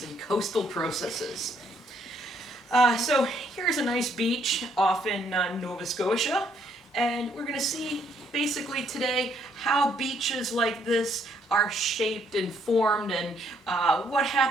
and coastal processes. So here's a nice beach off in Nova Scotia, and we're going to see basically today how beaches like this are shaped and formed and what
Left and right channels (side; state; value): both; normal; correlation 0.69